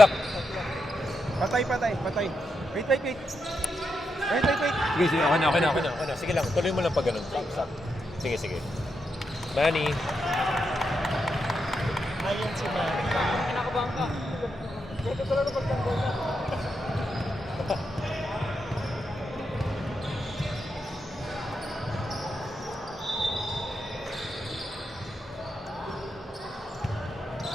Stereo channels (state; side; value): normal; both; correlation 0.84